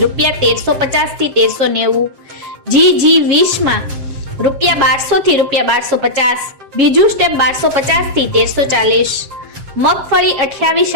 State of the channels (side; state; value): left; late; 7.6 ms